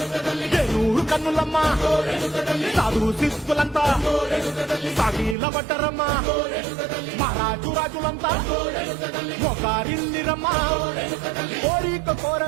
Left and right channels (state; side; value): drops out; left; at 5.4 s